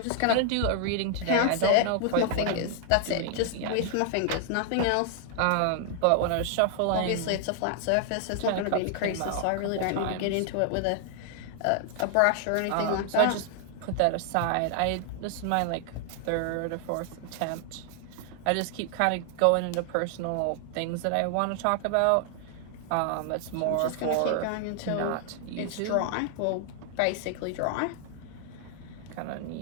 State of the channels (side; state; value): both; different; correlation 0.00